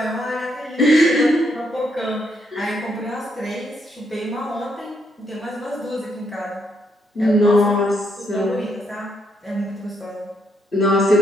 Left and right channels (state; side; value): normal; both; correlation 0.76